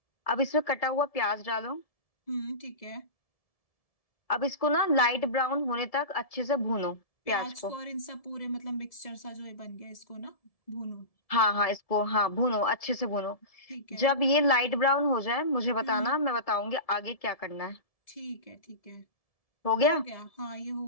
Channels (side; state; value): right; late; 1.7 ms